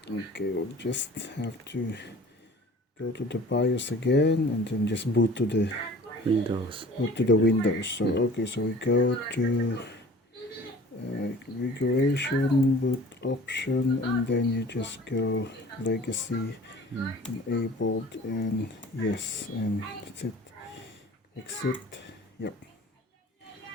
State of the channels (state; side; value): normal; both; correlation 0.46